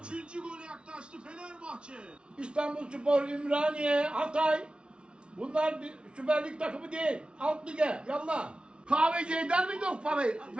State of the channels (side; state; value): left; late; 0.057 ms